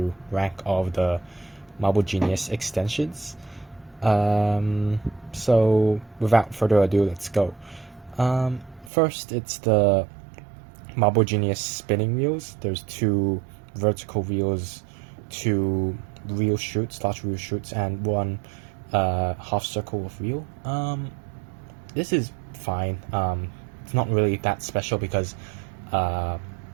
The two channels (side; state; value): left; drops out; at 8.9 s